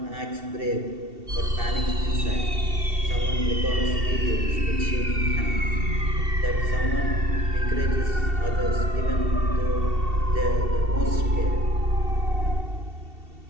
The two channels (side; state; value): left; late; 2.7 ms